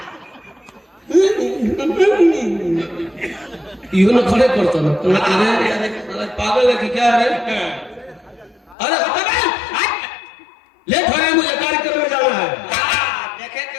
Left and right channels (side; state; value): right; drops out; at 8.8 s